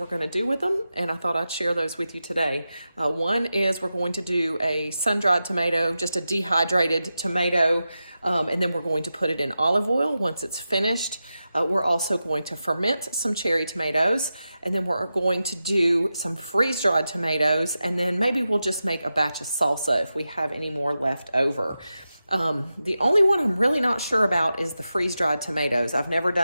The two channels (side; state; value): both; inverted; correlation -0.91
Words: going to do with them, and I thought I'd share those with you today. One is we're going to do a sun-dried tomato, just a dehydrated tomato, and then we're going to put it in olive oil once it's finished. We're also going to ferment some cherry tomatoes, and then we're going to do some freeze-dried tomatoes, and then maybe we'll just make a batch of salsa if we have any more left over. The only one I'm really not sure about is the freeze-dried tomatoes. I've never